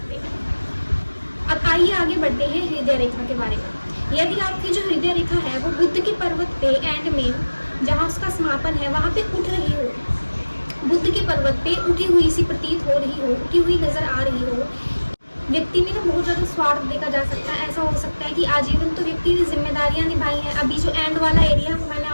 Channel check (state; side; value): inverted; both; correlation -1.00